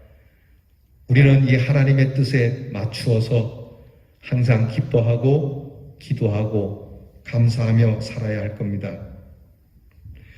우리는 이 하나님의 뜻에 맞추어서 항상 기뻐하고 기도하고 감사하며 살아야 할 겁니다.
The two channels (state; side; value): identical; both; correlation 1.00